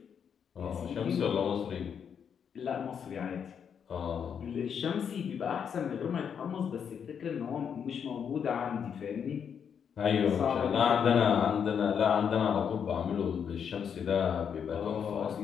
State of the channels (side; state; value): right; quieter; 7.5 dB